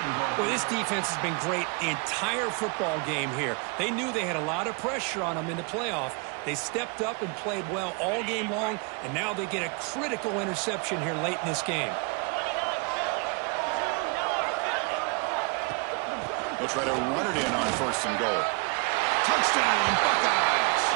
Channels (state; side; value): quieter; left; 32.5 dB